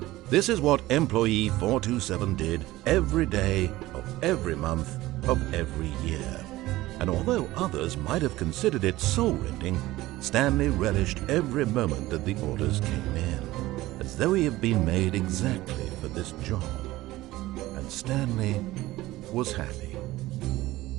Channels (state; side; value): quieter; left; 17.5 dB